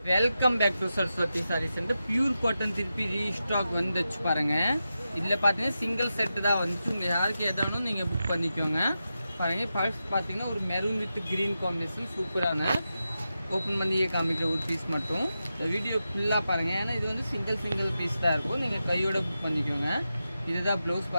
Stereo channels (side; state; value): both; inverted; correlation -0.90